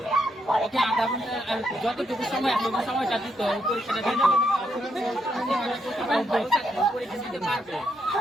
ওকে আধা ঘন্টা যতটুকু সময় আছে ওই সময়টা দিত, পরীক্ষাটা দিত, পরীক্ষা দিতে পারবে,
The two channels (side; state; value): both; normal; correlation 0.79